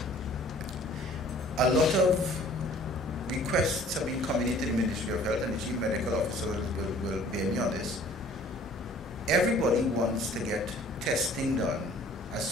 a lot of requests have been coming into the Ministry of Health, and the Chief Medical Officer will bear me on this, everybody wants to get testing done as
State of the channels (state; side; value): normal; both; correlation 0.53